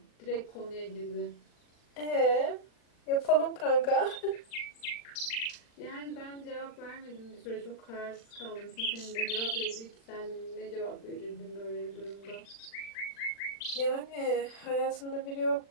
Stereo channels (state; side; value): late; right; 40 ms